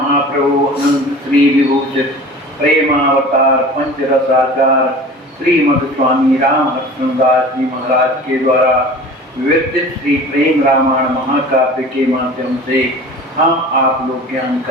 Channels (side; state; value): both; normal; correlation 0.40